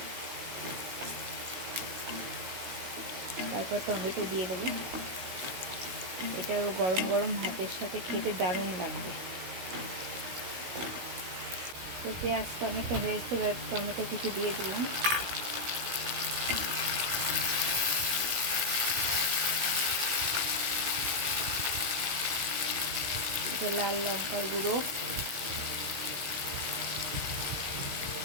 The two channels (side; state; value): left; late; 16 ms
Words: তারপর টমেটো দিয়ে দেবো। এটা গরম গরম ভাতের সাথে খেতে দারুণ লাগবে। তো পেঁয়াজটা অনেকটা হয়েছে, এবার টমেটো কিছু দিয়ে দিলাম। এটা লাল লঙ্কার গুঁড়ো,